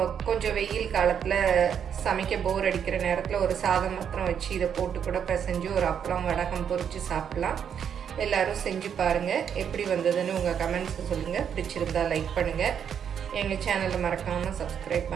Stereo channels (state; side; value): quieter; left; 8.1 dB